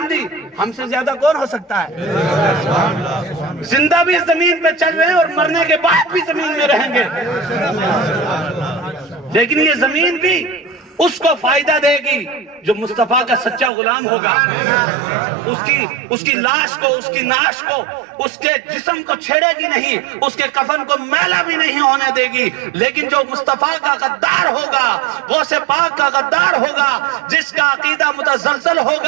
دی، ہم سے زیادہ کون ہو سکتا ہے؟ زندہ بھی زمین پہ چل رہے ہیں اور مرنے کے بعد بھی زمین میں رہیں گے. لیکن یہ زمین بھی اس کو فائدہ دے گی جو مصطفیٰ کا سچا غلام ہوگا. اس کی لاش کو، اس کی ناش کو، اس کے جسم کو چھیڑے گی نہیں، اس کے کفن کو میلا بھی نہیں ہونے دے گی. لیکن جو مصطفیٰ کا غدار ہوگا، غوث پاک کا غدار ہوگا، جس کا عقیدہ متزلزل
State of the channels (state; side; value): drops out; left; at 13.7 s